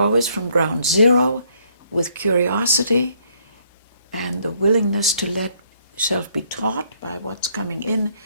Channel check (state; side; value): inverted; both; correlation -0.68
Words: from ground zero with curiosity and the willingness to let yourself be taught by what's coming in,